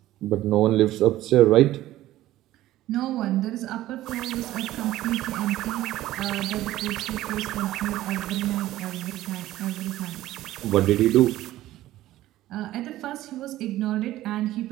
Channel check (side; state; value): left; quieter; 15.0 dB